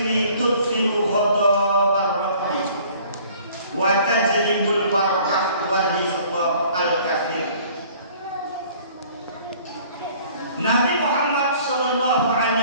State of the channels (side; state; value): both; inverted; correlation -0.54